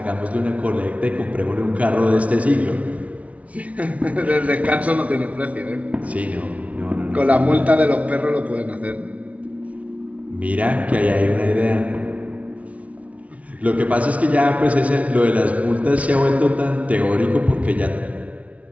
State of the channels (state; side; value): late; left; 0.066 ms